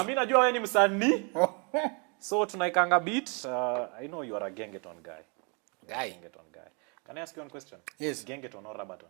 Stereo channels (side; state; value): left; quieter; 34.5 dB